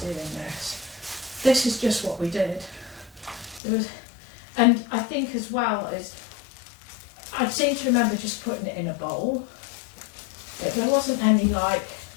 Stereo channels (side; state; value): right; drops out; at 3.6 s